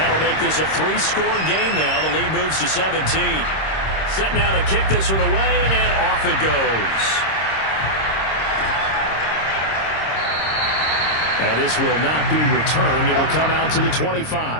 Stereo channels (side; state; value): right; late; 26 ms